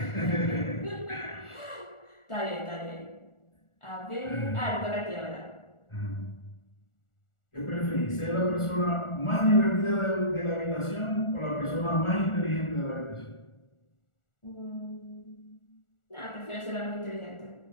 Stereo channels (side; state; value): right; late; 1.4 ms